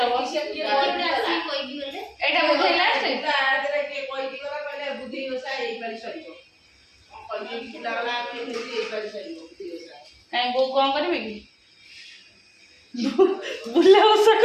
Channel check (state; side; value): identical; both; correlation 1.00